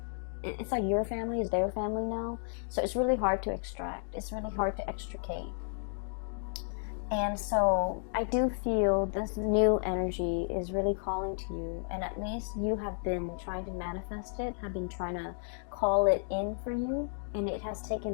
it's like your family is their family now. So it's really hard to extract. It's really hard to extricate. And so I do feel this new energy is really calling to you, and at least you have been trying to manifest it, have been trying to call it in for you, and it has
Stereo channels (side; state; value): right; silent; digital silence